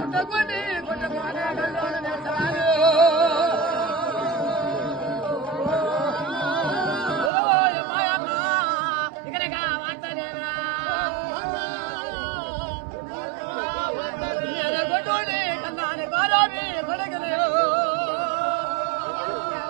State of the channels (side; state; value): left; drops out; at 7.3 s